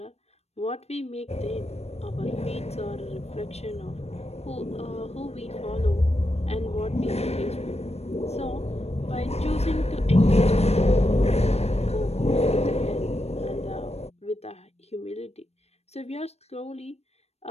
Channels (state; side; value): late; right; 0.31 ms